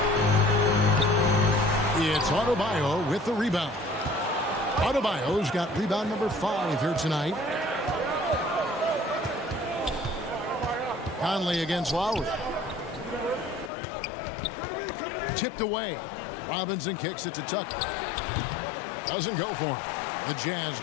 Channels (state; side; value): drops out; right; at 13.7 s